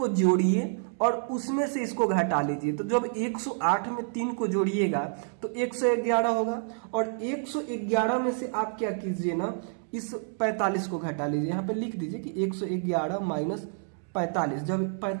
जोड़िए और उसमें से इसको घटा लीजिए। तो जब 108 में 3 को जोड़िएगा तो 111 होगा, और 111 में से आप क्या कीजिए ना, इस 45 को घटा लीजिए। यहाँ पे लिख दीजिए कि 111 माइनस 45, जब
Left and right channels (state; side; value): silent; left; 59 dB below the other